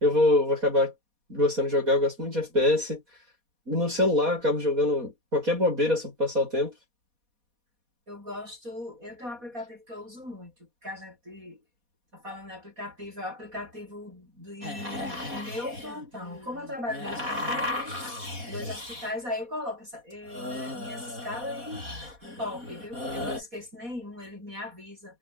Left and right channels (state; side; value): late; left; 4.2 ms